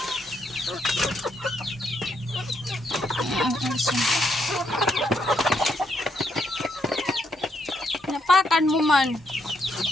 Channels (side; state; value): both; normal; correlation 0.77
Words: Napakan mo man.